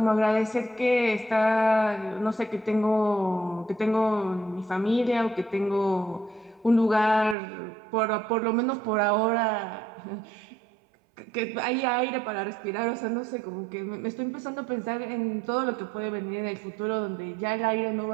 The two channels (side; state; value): left; drops out; at 7.4 s